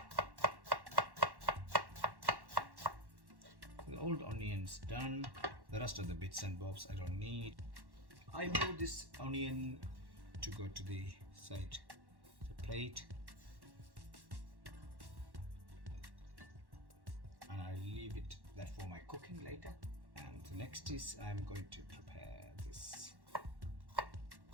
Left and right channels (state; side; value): late; left; 1.1 ms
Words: The old onions done. The rest of the bits and bobs I don't need. I move this onion to go to the side, the plate, and I leave it that for my cooking later. And the next is I'm going to prepare this